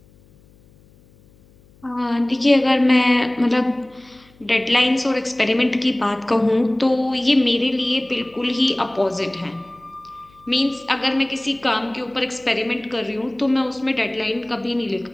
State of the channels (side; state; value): left; noise; hum, 29 dB below the sound